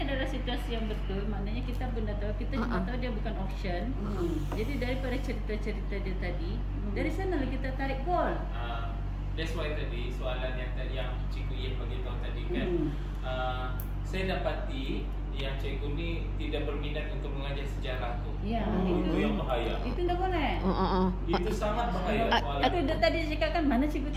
adalah situasi yang betul. Maknanya kita pun dah tahu. Kita cuma tahu dia bukan option. Jadi daripada cerita-cerita dia tadi, dari sana kita tarik goal. That's why tadi soalan yang Cikgu Yen bagi tahu tadi kan, saya dapati yang cikgu ni tidak berminat untuk mengajar sejarah tu. Itu yang bahaya. Itu tak boleh. Itu sangat bahaya. Itu dia tadi cakap kan mana cikgu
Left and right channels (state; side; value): identical; both; correlation 1.00